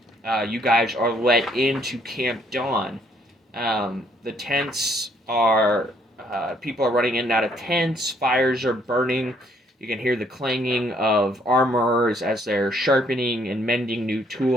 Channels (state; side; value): normal; both; correlation 0.66